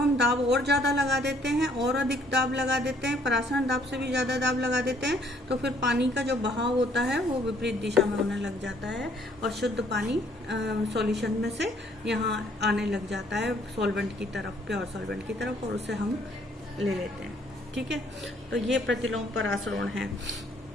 दाब और ज़्यादा लगा देते हैं, और अधिक दाब लगा देते हैं, परासरण दाब से भी ज़्यादा दाब लगा देते हैं, तो फिर पानी का जो बहाव होता है वो विपरीत दिशा में होने लग जाता है और शुद्ध पानी सॉल्यूशन में से यहाँ आने लग जाता है सॉल्वेंट की तरफ, प्योर सॉल्वेंट की तरफ, और उसे हम ले लेते हैं। ठीक है, तो ये प्रतिलोम परासरण है।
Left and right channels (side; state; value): both; normal; correlation 0.63